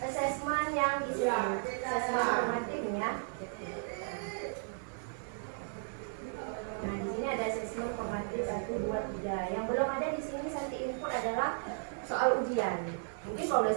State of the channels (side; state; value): left; silent; 55 dB below the other